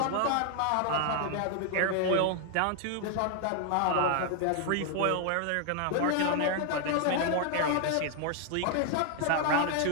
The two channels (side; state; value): both; different; correlation 0.00